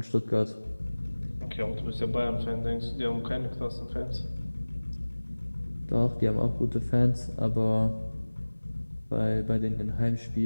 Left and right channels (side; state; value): both; inverted; correlation -1.00